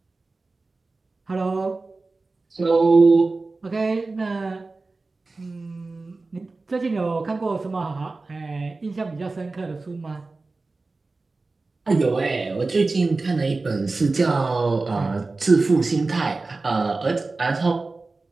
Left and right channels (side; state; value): left; quieter; 3.6 dB